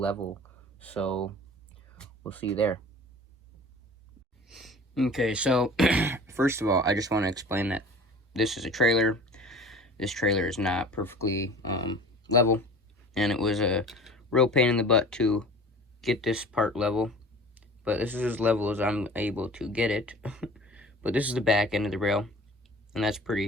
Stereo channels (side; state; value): both; normal; correlation 0.42